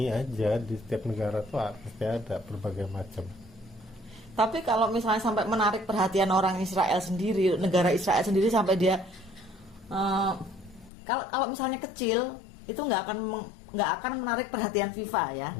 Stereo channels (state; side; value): drops out; right; at 10.9 s